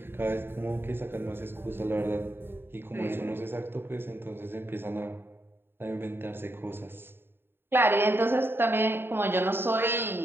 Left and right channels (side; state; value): left; late; 0.11 ms